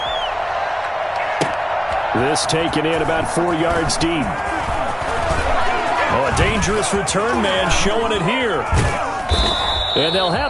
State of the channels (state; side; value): identical; both; correlation 1.00